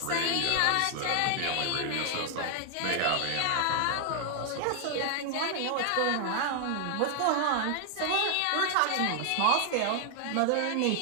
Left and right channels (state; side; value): different; both; correlation 0.00